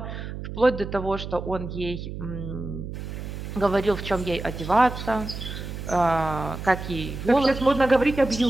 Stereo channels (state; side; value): noise; right; hum, 8 dB below the sound